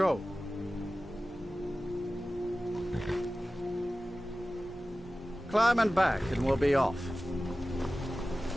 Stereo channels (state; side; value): normal; both; correlation 0.96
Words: Climb and back and we'll be off.